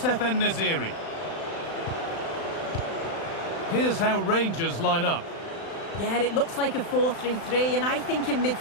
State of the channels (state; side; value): late; right; 36 ms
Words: En-Nesyri. Here's how Rangers line up. Yeah, it looks like a 4-3-3, and I think in